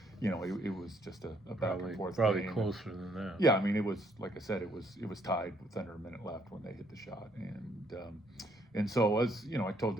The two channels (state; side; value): normal; both; correlation 0.69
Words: was just a back and forth probably game. Closer than that. Yeah, I mean, it was, like I said, it was tied with under a minute left when they hit the shot, and so as I told